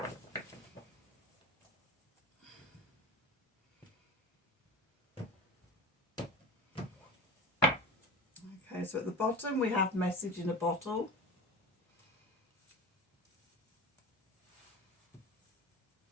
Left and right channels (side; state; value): both; normal; correlation 0.28